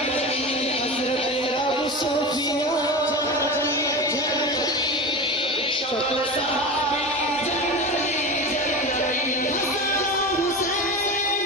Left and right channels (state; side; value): normal; both; correlation 0.27